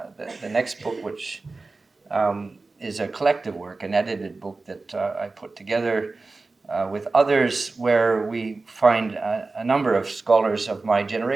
next book, which is a collective work, an edited book that I put together with others, where we find a number of scholars of my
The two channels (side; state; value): left; quieter; 3.6 dB